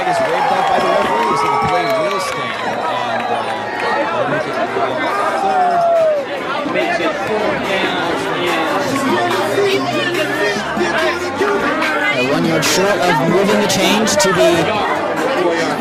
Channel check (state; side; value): identical; both; correlation 1.00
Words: is waved off by the referee, so the play will stand. And they'll make it third. Makes it 4th down. 1 yard short of moving the change to be